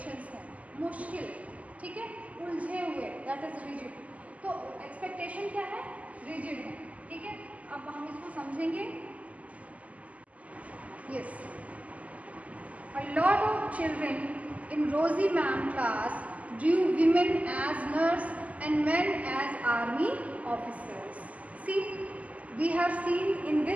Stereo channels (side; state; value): left; late; 0.071 ms